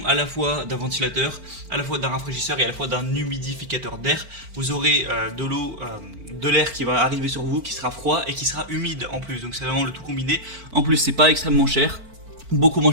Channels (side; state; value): left; late; 4.4 ms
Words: à la fois d'un ventilateur, à la fois d'un rafraîchisseur et à la fois d'un humidificateur d'air. Vous aurez de l'eau, de l'air qui va arriver sur vous, qui sera froid et qui sera humide en plus. Donc c'est vraiment le tout combiné. En plus, c'est pas extrêmement cher, beaucoup moins